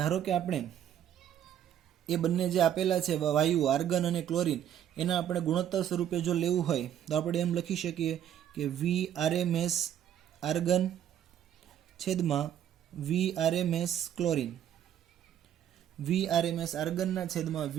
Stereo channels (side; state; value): left; quieter; 10.4 dB